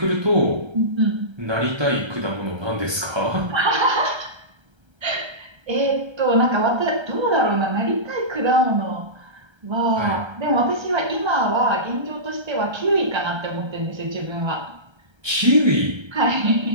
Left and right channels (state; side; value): late; left; 1.3 ms